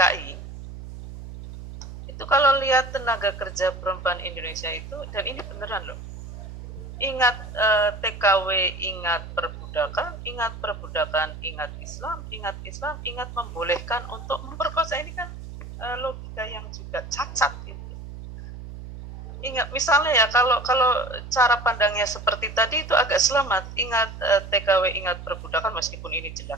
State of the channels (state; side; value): noise; right; hum, 12 dB below the sound